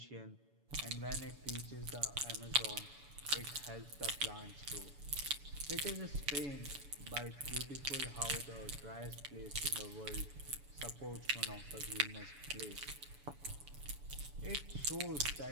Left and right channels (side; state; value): left; late; 7.0 ms